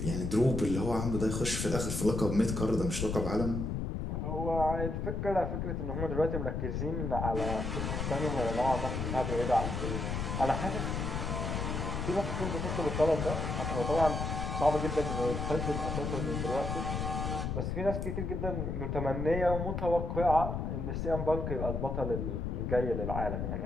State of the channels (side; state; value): left; noise; rumble, 2 dB below the sound